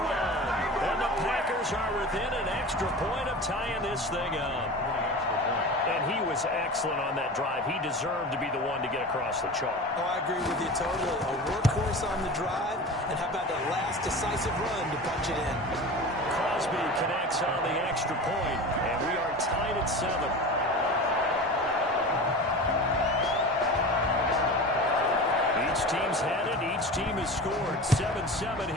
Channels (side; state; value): both; normal; correlation 0.32